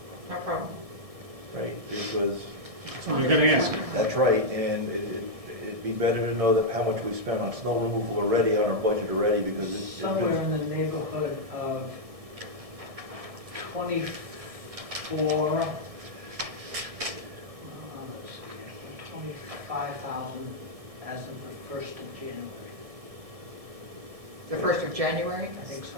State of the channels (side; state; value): left; late; 1.7 ms